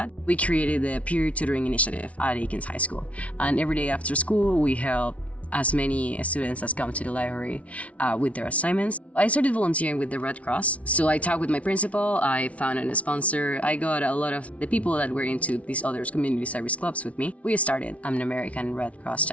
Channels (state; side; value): late; right; 0.065 ms